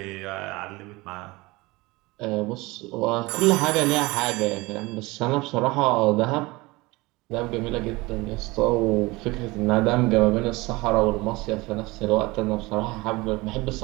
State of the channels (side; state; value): left; quieter; 22.3 dB